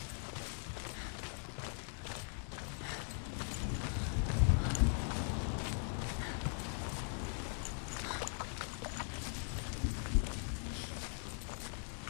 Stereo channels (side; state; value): right; silent; 51 dB below the other